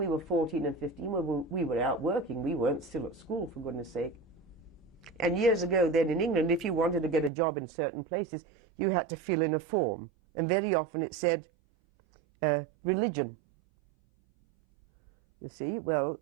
were 14 and 15. We were out working. We weren't still at school, for goodness sake. And years ago then in England, if you wanted to get a job in certain places, you had to fill in a form. And very often it said, religion. You see, well,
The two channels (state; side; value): drops out; left; at 7.3 s